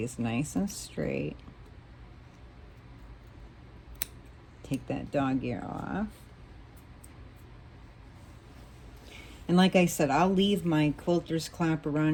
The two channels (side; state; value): both; identical; correlation 1.00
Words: nice and straight. Take that dog ear off. And like I said, I'll leave my quilter's clapper